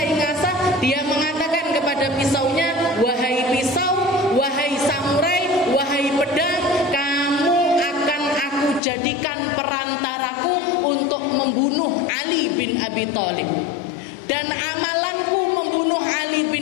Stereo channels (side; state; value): right; drops out; at 8.8 s